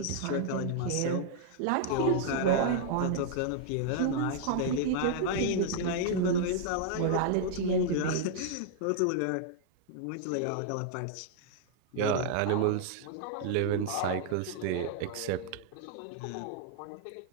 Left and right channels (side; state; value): both; different; correlation -0.01